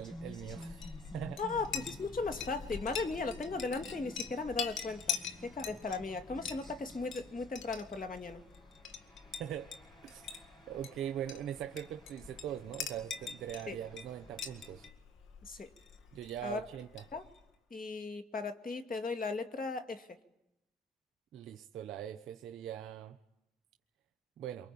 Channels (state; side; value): normal; both; correlation 0.51